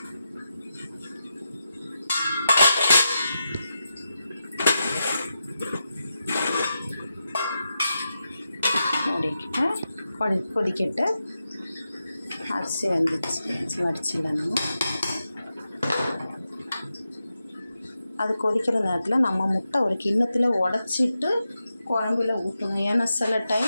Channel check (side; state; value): both; inverted; correlation -0.89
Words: மூடிக்கிட்டு கொதிக்கிட்டு அரிசி வந்துச்சு வடிச்சிடலாம். அது கொதிக்கிற நேரத்தில் நம்ம முட்டை ஒரு கிண்ணத்தில் உடச்சிட்டு குழம்புல ஊற்றணும். ஏன்னா சில